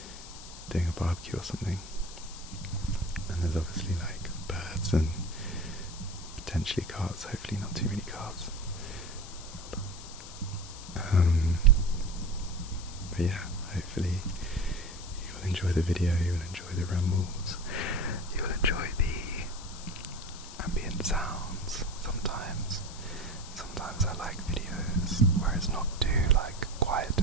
doing a barbecue or something, and there's obviously like birds and potentially cars, hopefully not too many cars. But yeah, hopefully you will enjoy the video, you will enjoy the rambles, you will enjoy the ambient sounds. Sometimes I like videos where it's not too like quiet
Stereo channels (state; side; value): noise; left; hiss, 14 dB below the sound